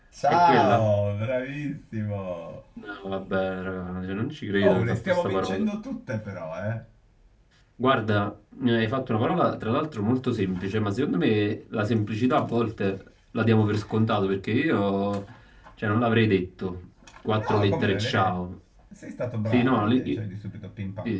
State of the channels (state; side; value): identical; both; correlation 1.00